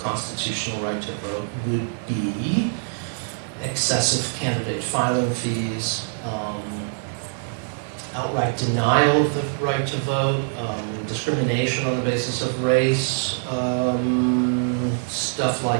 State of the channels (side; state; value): left; silent; digital silence